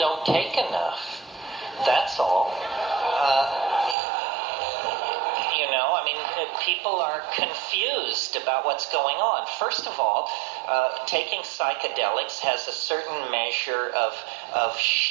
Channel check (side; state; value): left; drops out; at 4.0 s